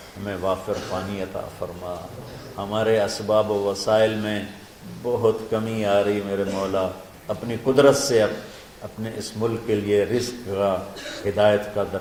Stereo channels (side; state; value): both; identical; correlation 1.00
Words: ہمیں وافر پانی عطا فرما، ہمارے اسباب و وسائل میں بہت کمی آ رہی میرے مولا، اپنی قدرت سے اپنے اس ملک کے لیے رزق کا، ہدایت کا